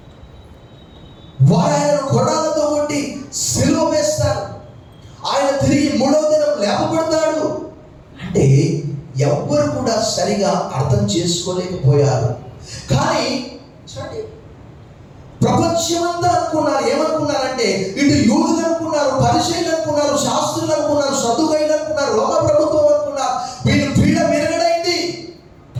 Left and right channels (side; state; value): both; identical; correlation 1.00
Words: ఆయనను కొడాలతో కొట్టి సిలువ వేస్తారు. ఆయన తిరిగి 3వ దినం లేపబడతాడు అంటే ఎవ్వరు కూడా సరిగా అర్థం చేసుకోలేకపోయారు. కానీ ప్రపంచమంతా అనుకున్నారు. ఏమనుకున్నారంటే ఇటు యూదులు అనుకున్నారు, పరిచయులు అనుకున్నారు, శాస్త్రులు అనుకున్నారు, సదుకైలు అనుకున్నారు, రోమ ప్రభుత్వం అనుకున్నారు. వీళ్ళు పీడ విరగడైంది.